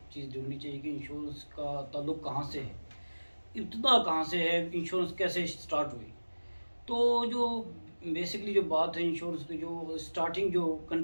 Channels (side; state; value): both; inverted; correlation -1.00